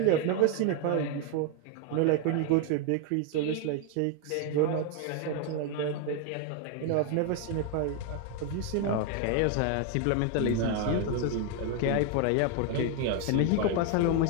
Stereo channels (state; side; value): different; both; correlation 0.01